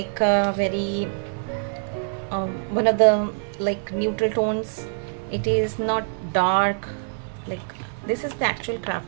very one of the like neutral tones. It is not dark, like this is the actual craft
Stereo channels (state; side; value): silent; left; digital silence